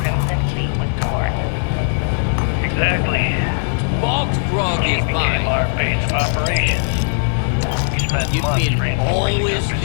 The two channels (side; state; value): right; silent; 59 dB below the other